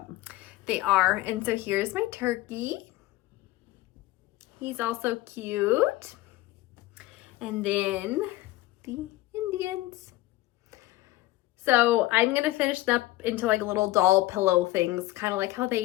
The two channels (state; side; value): quieter; right; 17.7 dB